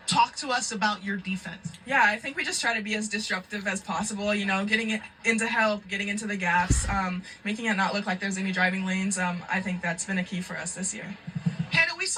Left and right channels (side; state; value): both; identical; correlation 1.00